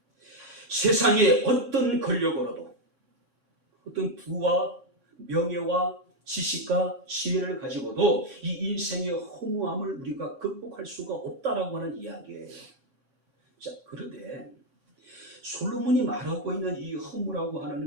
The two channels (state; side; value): late; left; 3.6 ms